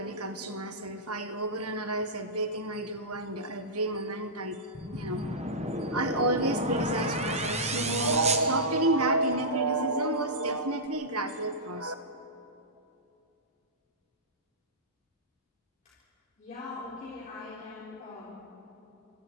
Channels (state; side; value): normal; both; correlation -0.14